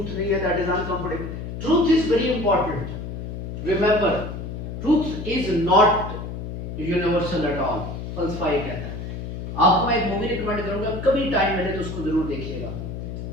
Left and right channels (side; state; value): left; noise; hum, 7 dB below the sound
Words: नहीं है, that is uncomfortable. Truth is very important. Remember, truth is not universal at all. फलसफा ये कहता है. आपको मैं एक मूवी रिकमेंड करूंगा, कभी टाइम मिले तो उसको जरूर देखिएगा.